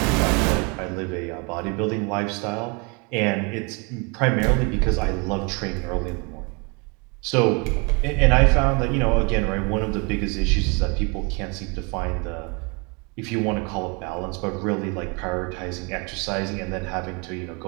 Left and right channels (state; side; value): quieter; left; 31.6 dB